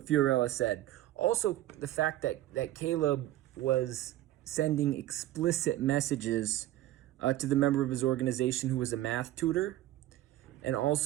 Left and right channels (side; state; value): left; quieter; 14.6 dB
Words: Fiorella said. Also, the fact that Caleb was sending explicit messages to the member of his organization who was a math tutor, and